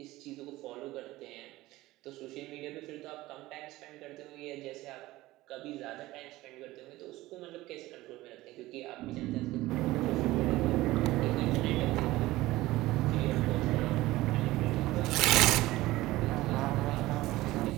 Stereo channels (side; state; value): left; quieter; 17.8 dB